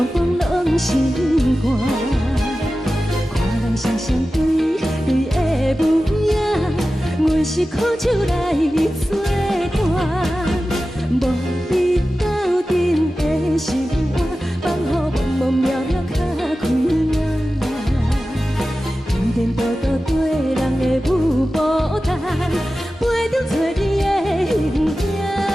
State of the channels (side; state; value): both; normal; correlation 0.94